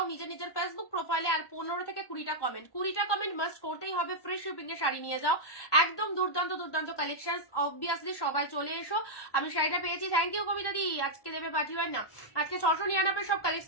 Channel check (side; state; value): right; late; 1.1 ms